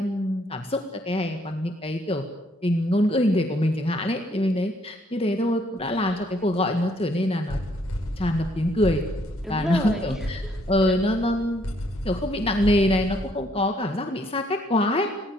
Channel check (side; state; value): both; normal; correlation 0.68